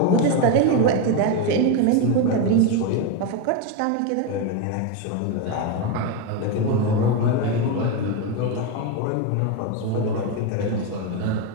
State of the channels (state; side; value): different; both; correlation 0.03